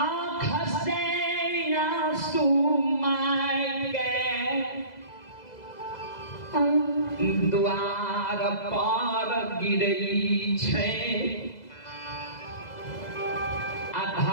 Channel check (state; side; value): late; right; 2.0 ms